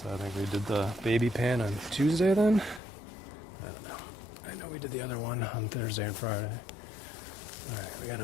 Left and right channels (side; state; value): right; drops out; at 2.8 s